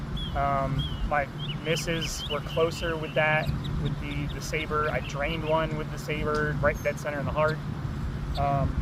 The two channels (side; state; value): both; identical; correlation 1.00